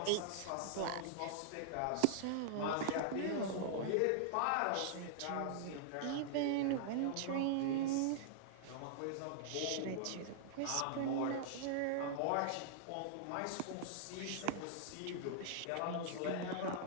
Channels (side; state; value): both; different; correlation -0.01